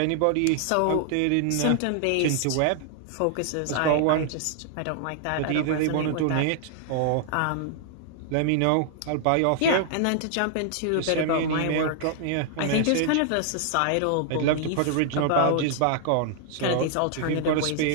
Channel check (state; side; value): different; both; correlation 0.00